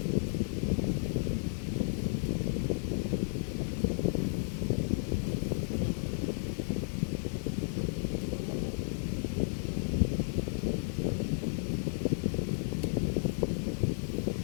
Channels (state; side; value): silent; right; digital silence